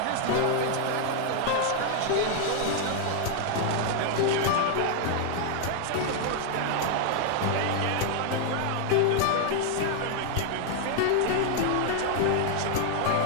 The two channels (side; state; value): both; different; correlation 0.00